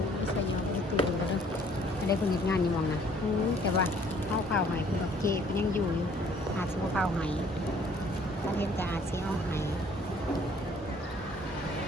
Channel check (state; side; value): normal; both; correlation 0.59